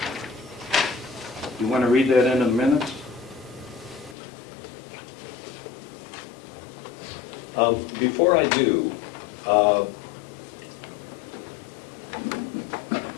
You want to read that into the minutes? Before I do,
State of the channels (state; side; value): drops out; right; at 4.2 s